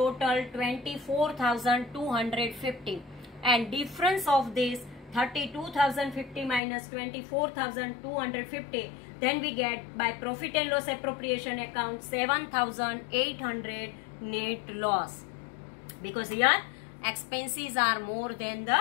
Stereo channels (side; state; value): right; drops out; at 6.6 s